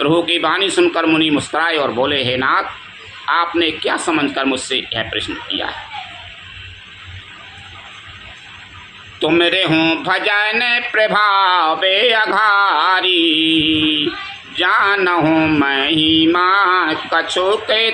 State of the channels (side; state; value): both; identical; correlation 1.00